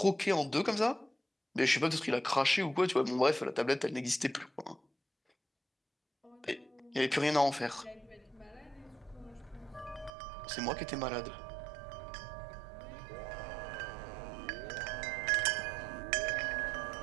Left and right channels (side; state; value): left; drops out; at 10.1 s